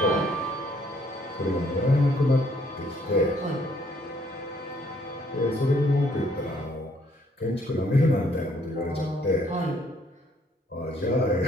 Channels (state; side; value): normal; both; correlation 0.66